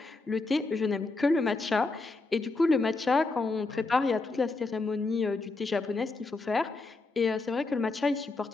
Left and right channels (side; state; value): right; quieter; 3.5 dB